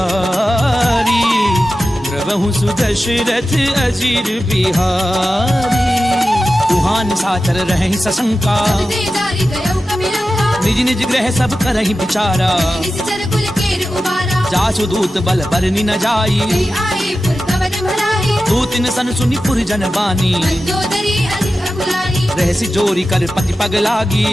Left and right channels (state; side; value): normal; both; correlation 0.93